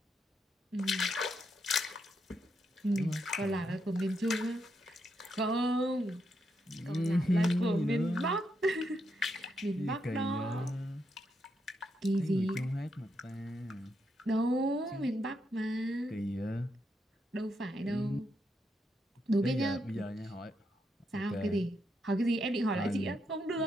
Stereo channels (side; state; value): both; normal; correlation 0.81